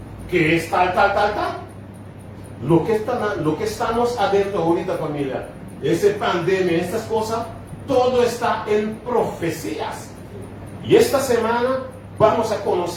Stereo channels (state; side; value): identical; both; correlation 1.00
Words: que es tal. Lo que estamos adentro ahorita, familia, esa pandemia, estas cosas, todo está en profecías. Y esta semana vamos a